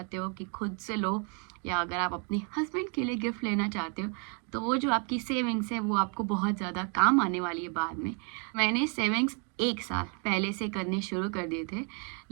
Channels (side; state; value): left; quieter; 38.1 dB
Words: हो कि खुद से लो, या अगर आप अपने हस्बैंड के लिए गिफ्ट लेना चाहते हो, तो वो जो आपकी सेविंग्स है वो आपको बहुत ज़्यादा काम आने वाली है बाद में। मैंने सेविंग्स 1 साल पहले से करने शुरू कर दिए थे,